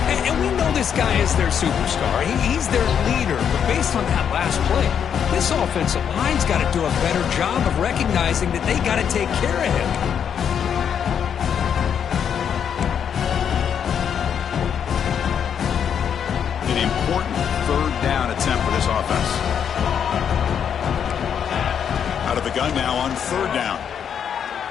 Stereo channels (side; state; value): right; quieter; 8.1 dB